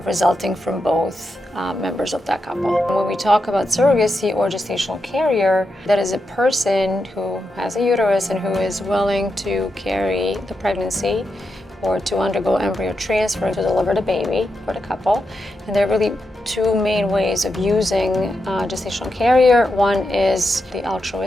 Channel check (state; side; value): normal; both; correlation 0.86